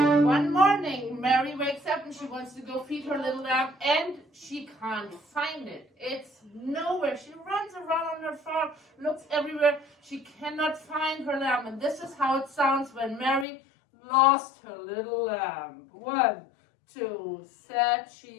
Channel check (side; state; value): right; drops out; at 13.5 s